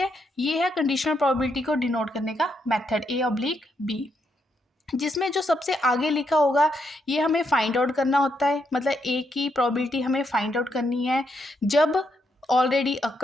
ये है कंडीशनल प्रोबेबिलिटी को डिनोट करने का मेथड, A/B। जिसमें जो सबसे आगे लिखा होगा ये हमें फाइंड आउट करना होता है, मतलब ए की प्रोबेबिलिटी हमें फाइंड आउट करनी है जब ऑलरेडी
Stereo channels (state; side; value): normal; both; correlation 0.78